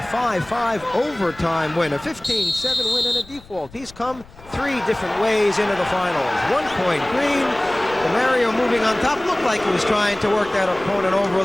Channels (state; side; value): noise; left; rumble, 22 dB below the sound